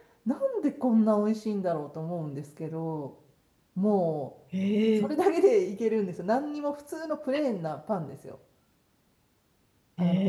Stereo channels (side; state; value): both; identical; correlation 1.00